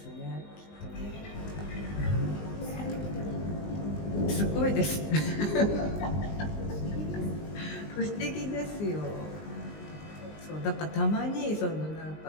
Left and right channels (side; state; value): right; late; 19 ms